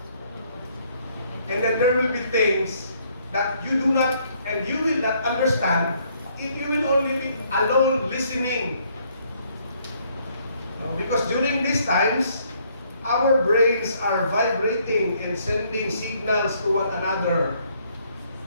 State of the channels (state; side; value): inverted; both; correlation -0.67